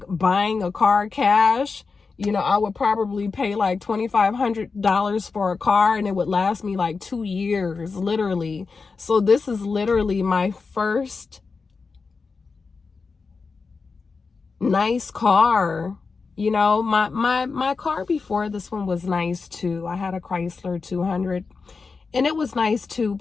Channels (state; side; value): quieter; right; 4.6 dB